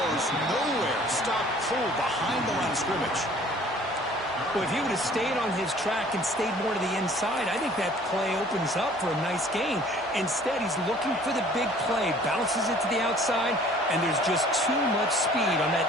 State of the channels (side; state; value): both; normal; correlation 0.53